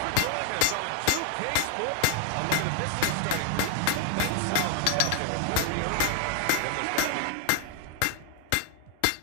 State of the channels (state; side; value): different; both; correlation 0.00